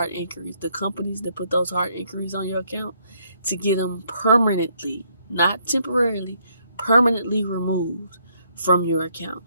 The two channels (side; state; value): both; inverted; correlation -0.70